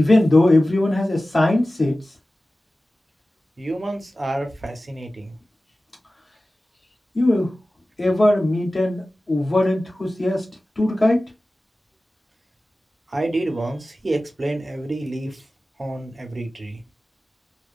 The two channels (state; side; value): normal; both; correlation 0.96